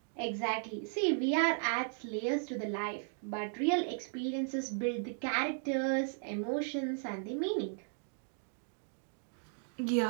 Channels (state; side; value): silent; left; digital silence